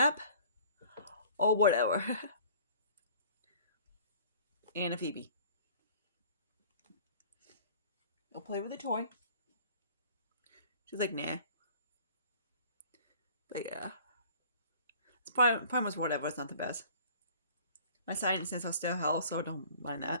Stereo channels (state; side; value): inverted; both; correlation -0.50